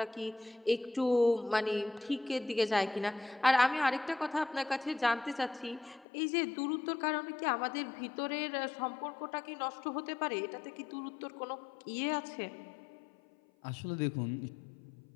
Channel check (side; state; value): right; drops out; at 6.1 s